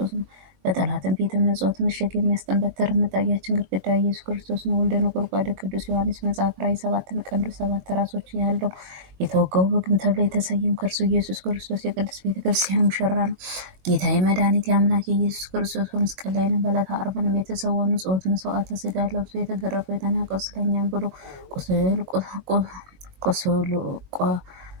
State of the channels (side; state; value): left; late; 21 ms